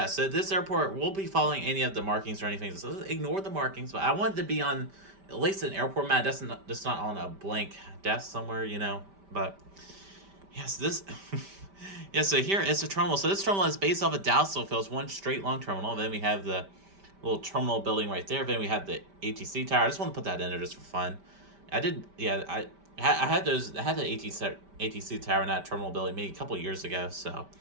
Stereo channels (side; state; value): left; late; 5.1 ms